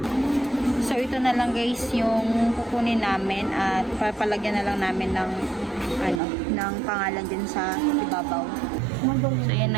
So, ito na lang guys yung kukunin namin at papalagyan na lang namin ng ng pangalan din sa ibabaw. So, yan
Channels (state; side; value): drops out; left; at 6.2 s